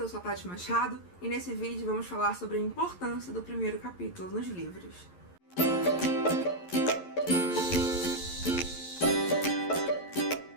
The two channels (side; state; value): right; late; 11 ms